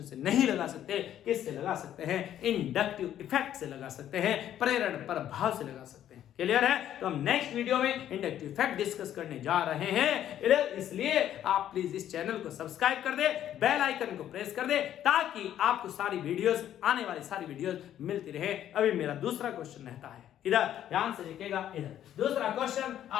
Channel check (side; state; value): right; quieter; 11.1 dB